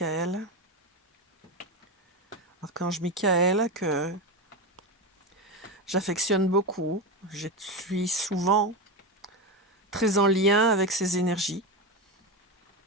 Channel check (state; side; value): normal; both; correlation 0.17